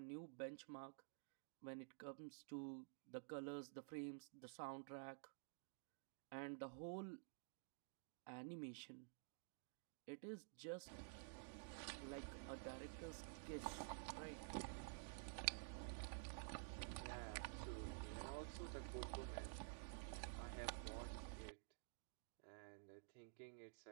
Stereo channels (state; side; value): silent; left; digital silence